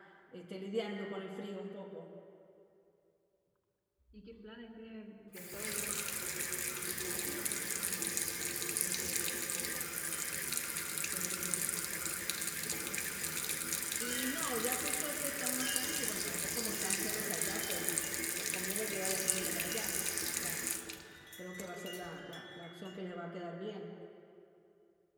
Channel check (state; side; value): identical; both; correlation 1.00